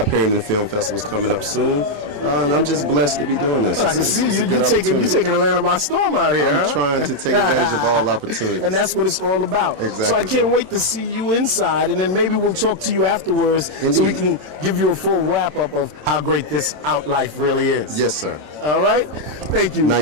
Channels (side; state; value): left; late; 27 ms